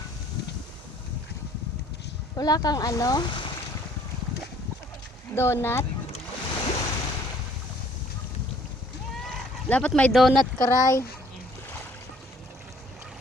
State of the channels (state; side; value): normal; both; correlation 0.59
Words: Wala kang ano? Donut? Dapat may donut ka, Ray.